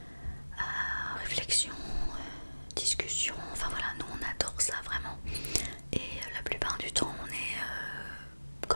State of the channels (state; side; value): inverted; both; correlation -1.00